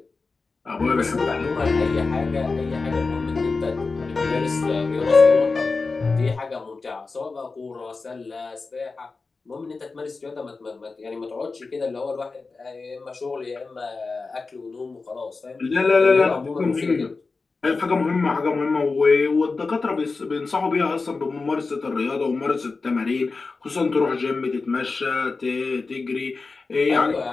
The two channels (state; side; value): quieter; right; 4.1 dB